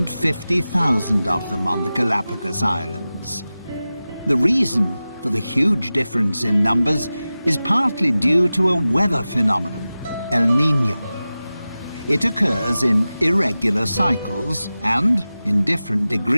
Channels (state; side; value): inverted; both; correlation -0.95